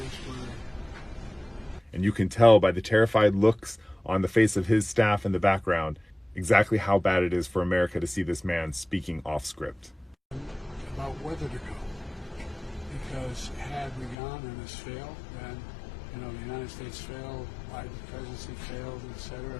where... And you can tell by the terrified looks on the face of his staff in the background exactly how bad it is for America to see this man speaking off script. About whether to go. Because had we gone and this failed, then, the United States failed, Biden's presidency failed, etc.,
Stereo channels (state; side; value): drops out; right; at 14.2 s